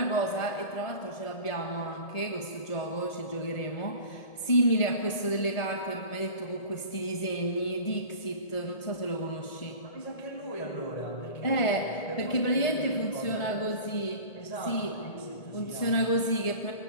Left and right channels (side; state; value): right; late; 1.7 ms